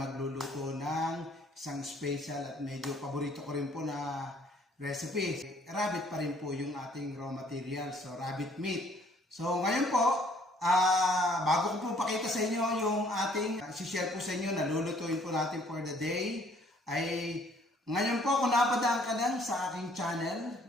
ng isang special at medyo paborito ko rin po na recipe. Rabbit pa rin po yung ating raw material, so rabbit meat. So ngayon po, bago ko po pakita sa inyo yung ating share po sa inyo na lulutuin po natin for the day, ay ngayon po kung napadaan ka lang sa aking channel,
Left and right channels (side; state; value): both; normal; correlation 0.61